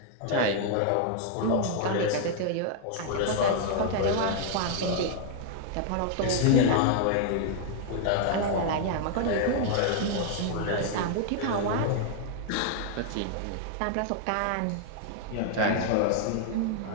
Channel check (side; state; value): both; different; correlation 0.00